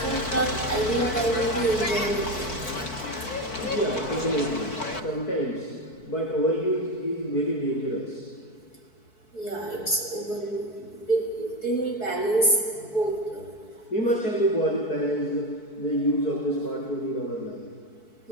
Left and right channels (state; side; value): late; right; 4.6 ms